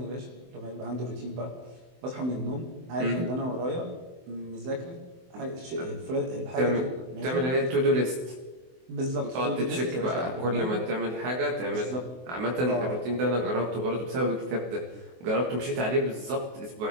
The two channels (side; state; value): left; late; 23 ms